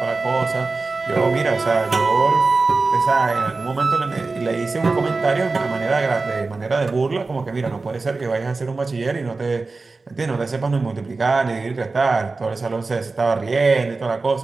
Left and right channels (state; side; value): quieter; left; 3.8 dB